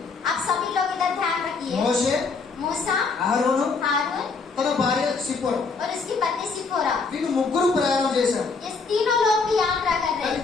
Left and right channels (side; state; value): right; quieter; 4.5 dB